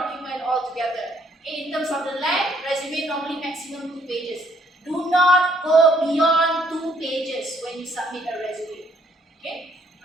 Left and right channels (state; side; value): normal; both; correlation 0.66